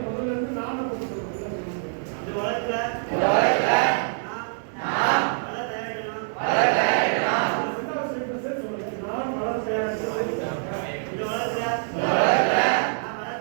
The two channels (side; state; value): left; silent; digital silence